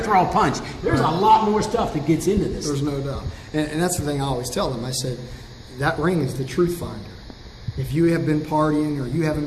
throw a punch. There's a lot more stuff that gets into this. There's no doubt, and that's the thing I always tell them. I said, that ring is the truth finder. If you have been partying, or you haven't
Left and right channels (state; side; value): identical; both; correlation 1.00